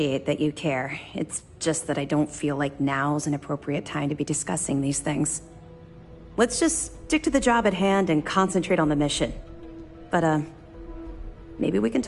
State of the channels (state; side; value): identical; both; correlation 1.00